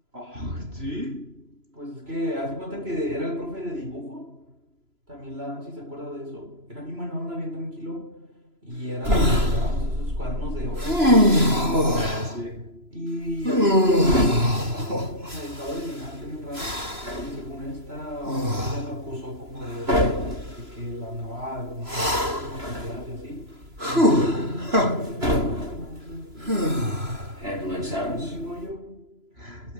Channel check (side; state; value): left; late; 3.0 ms